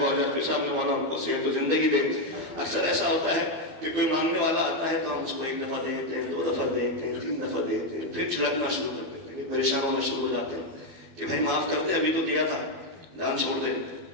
بہت جاتی صاحب نے، مولا ان کو صحت و زندگی دے۔ اکثر ایسا ہوتا ہے کہ کوئی مانگنے والا آتا ہے تو ہم اس کو 1 دفعہ دیتے ہیں، 2 دفعہ دیتے ہیں، 3 دفعہ دیتے ہیں، پھر چھڑکنا شروع کرتے ہیں، پریشان ہونا شروع ہو جاتے ہیں کہ بھائی معاف کر دے، ابھی تو دیا تھا، دان چھوڑ دے۔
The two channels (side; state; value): left; late; 12 ms